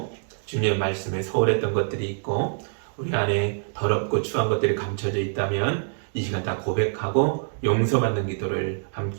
주님의 말씀에 소홀했던 것들이 있고 우리 안에 더럽고 추한 것들이 감춰져 있다면 이 시간 다 고백하고 용서받는 기도를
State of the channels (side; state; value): left; silent; digital silence